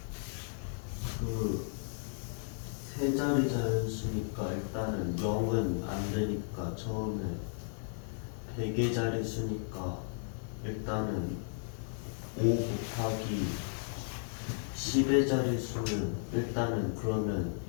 그 세 자리 자연수니까 일단은 0은 안 되니까 처음에 100의 자리 수니까 일단은 5 곱하기 10의 자리 수는 일단은 그러면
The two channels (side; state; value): right; silent; digital silence